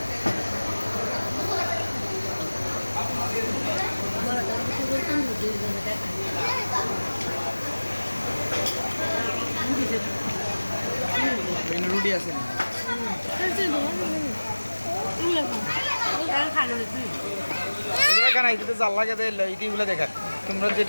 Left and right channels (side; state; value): both; inverted; correlation -1.00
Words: রুটি আছে কেন এটাতে জাল লাগে ইটিগুলো দেখা তোমরা